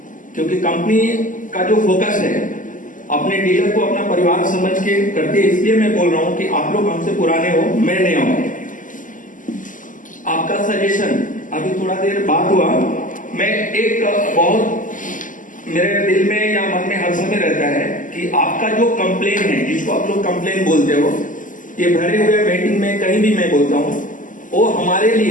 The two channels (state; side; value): late; right; 0.38 ms